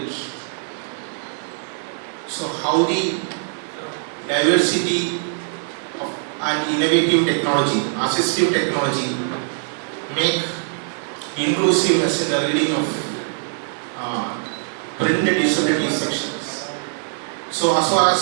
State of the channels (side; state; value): left; silent; 64 dB below the other